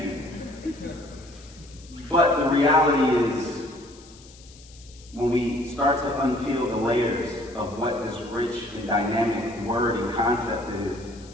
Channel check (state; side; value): noise; left; hiss, 23 dB below the sound